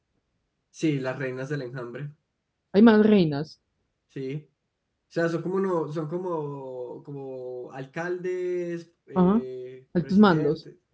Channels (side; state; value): both; identical; correlation 1.00